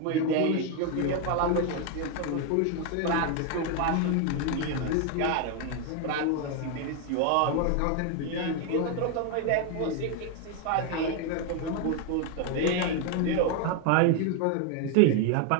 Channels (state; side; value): different; both; correlation 0.01